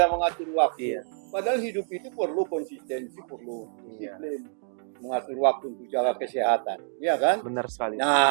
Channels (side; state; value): left; silent; digital silence